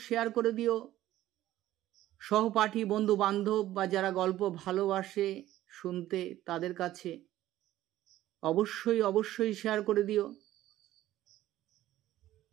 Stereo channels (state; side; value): quieter; left; 14.2 dB